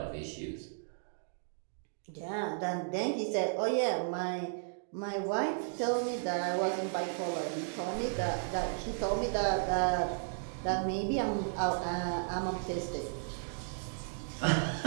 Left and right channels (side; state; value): left; silent; digital silence